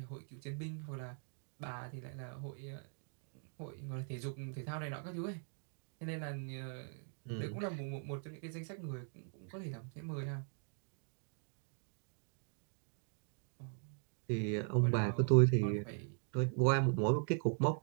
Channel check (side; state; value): left; silent; 51 dB below the other